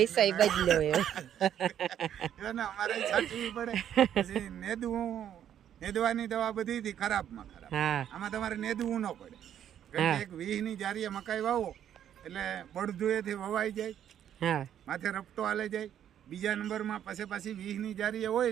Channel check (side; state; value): left; quieter; 10.1 dB